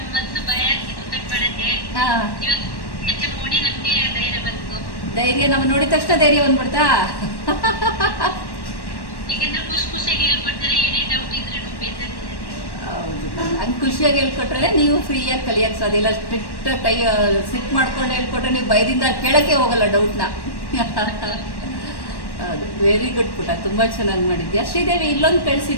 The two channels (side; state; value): right; late; 1.1 ms